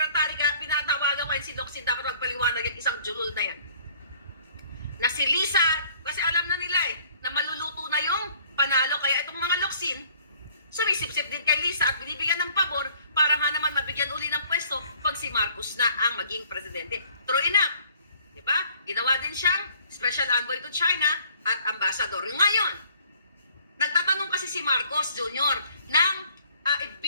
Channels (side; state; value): both; inverted; correlation -0.57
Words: Kaya pinatawagan ko si Locsin, dapat magpaliwanag yung isang julul na yan. Na si Lisa, kasi alam na nila na maluluto na yung panalo. Kaya itong mga Locsin, sumisip-sip din kay Lisa at binibigyan ng pabor para nga naman mabigyan uli ng pwesto pag si Marcos na ang maging presidente. True enough. Diba? Ginawa din siyang special envoy to China at ambassador. Ngayon, nagtatanong kasi si Marcos Jr. ng